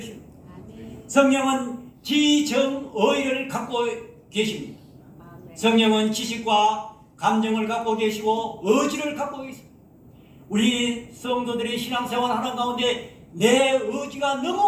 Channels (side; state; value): both; identical; correlation 1.00